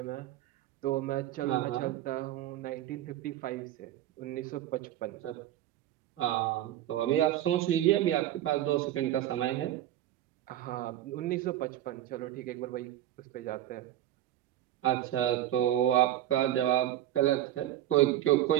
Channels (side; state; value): left; quieter; 13.0 dB